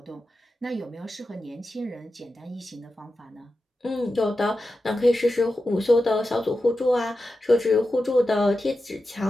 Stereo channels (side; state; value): both; normal; correlation 0.91